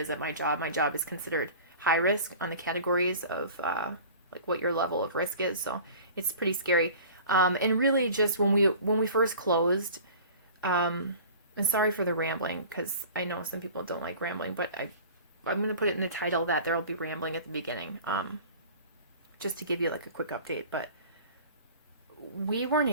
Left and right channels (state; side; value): inverted; both; correlation -0.42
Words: at my job. My job is considered high risk on the categories of what your level of risk is. So it's pretty scary. And really just when we first closed, and sorry for the rambling, because I know some people don't like rambling, but I'm going to put it in the title that there will be rambling at the beginning, just to give you a quick update. But we weren't